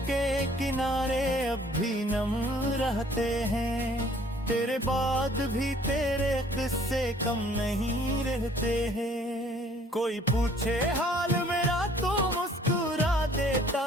के किनारे अब भी नम रहते हैं, तेरे बाद भी तेरे किस्से कम नहीं रहते हैं। कोई पूछे हाल मेरा तो मुस्कुरा देता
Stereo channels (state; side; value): normal; both; correlation 0.57